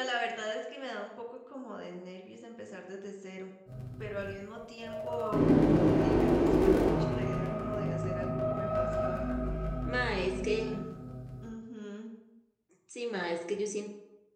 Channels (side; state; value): both; identical; correlation 1.00